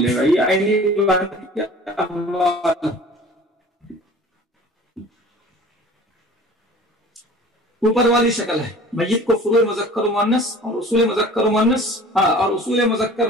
گا. یہ عینی بہن کے احوال اوپر والی شکل ہے. میت کو فروع مذکر و مؤنث اور اصول مذکر و مؤنث اور اصول مذکر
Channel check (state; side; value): normal; both; correlation 0.44